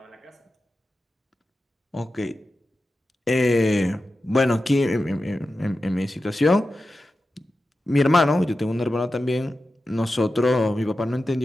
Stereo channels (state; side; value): normal; both; correlation 0.92